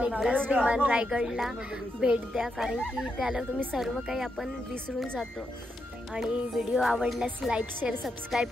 एकदाच विमान रायगडला भेट द्या कारण की त्याला तुम्ही सर्व काही आपण विसरून जातो. आणि व्हिडिओ आवडल्यास लाईक शेअर सबस्क्राईब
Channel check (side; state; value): both; normal; correlation 0.83